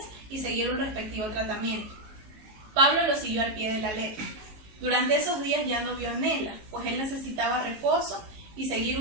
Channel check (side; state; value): left; late; 19 ms